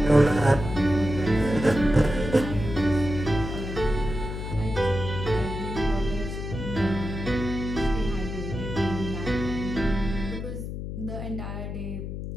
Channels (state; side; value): noise; left; hum, 6 dB below the sound